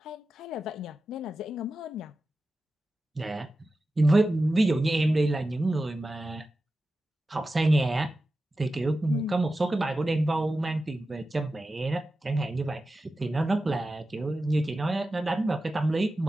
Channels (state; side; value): normal; both; correlation 0.93